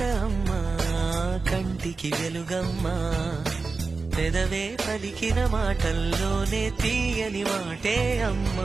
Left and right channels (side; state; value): left; quieter; 4.1 dB